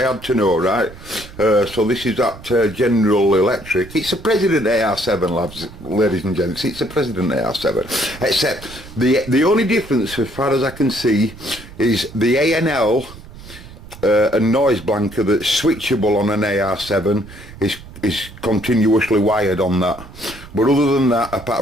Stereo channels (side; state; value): right; noise; rumble, 17 dB below the sound